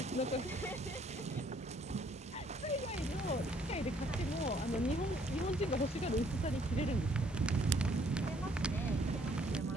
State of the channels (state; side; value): normal; both; correlation 0.64